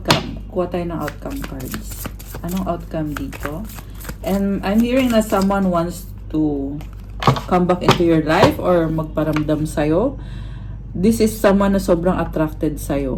Kuha tayo ng outcome cards. Anong outcome dito? And I'm hearing na someone wants to come back into your life or magparamdam sa'yo. This is someone na sobrang attracted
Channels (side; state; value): both; identical; correlation 1.00